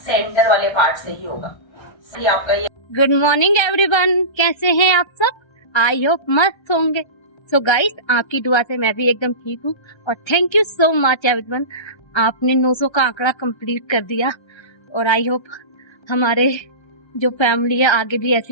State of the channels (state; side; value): late; right; 1.3 ms